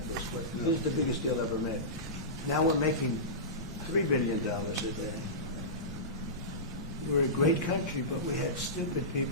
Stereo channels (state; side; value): normal; both; correlation -0.19